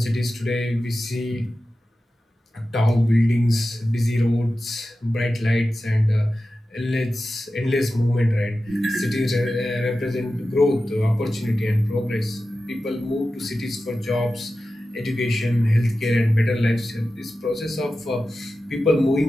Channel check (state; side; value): normal; both; correlation 0.93